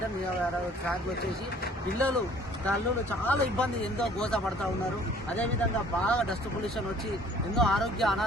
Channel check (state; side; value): normal; both; correlation 0.54